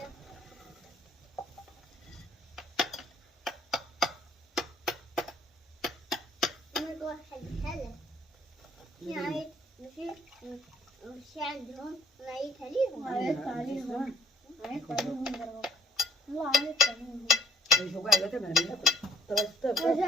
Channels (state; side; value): normal; both; correlation 0.63